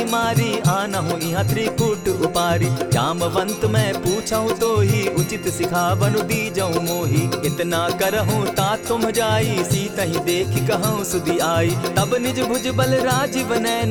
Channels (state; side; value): identical; both; correlation 1.00